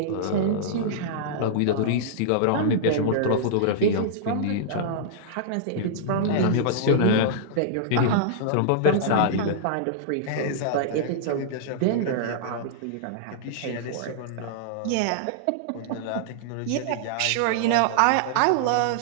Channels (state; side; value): different; both; correlation -0.02